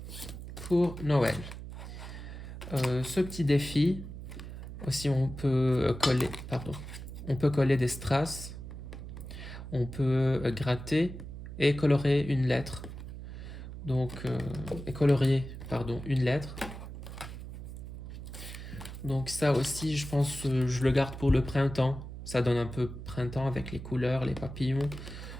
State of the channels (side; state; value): right; noise; hum, 10 dB below the sound